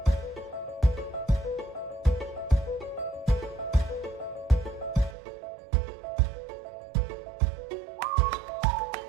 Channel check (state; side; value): drops out; left; at 5.2 s